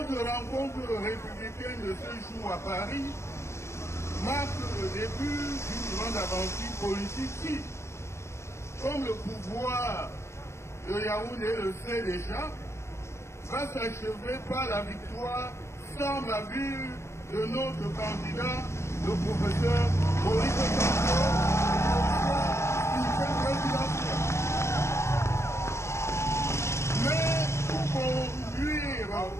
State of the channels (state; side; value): late; right; 0.13 ms